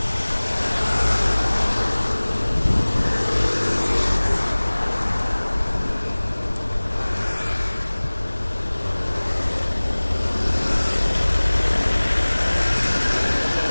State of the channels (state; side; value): inverted; both; correlation -1.00